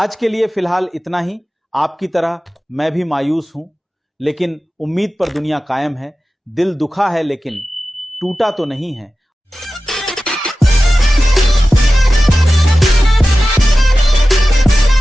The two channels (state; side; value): normal; both; correlation 0.95